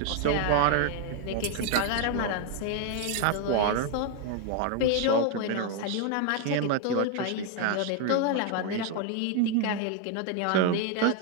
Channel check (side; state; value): both; different; correlation 0.01